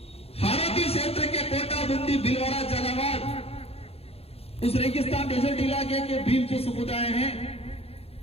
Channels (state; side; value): late; right; 0.29 ms